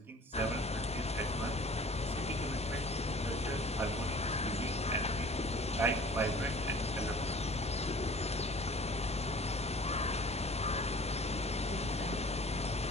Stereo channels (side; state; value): both; normal; correlation 0.47